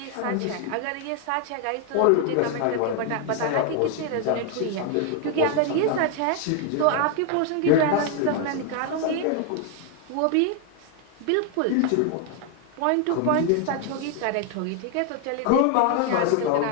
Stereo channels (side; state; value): both; different; correlation 0.01